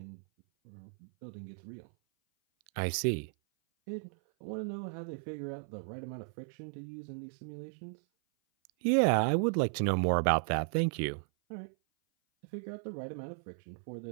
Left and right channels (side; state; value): left; silent; 54 dB below the other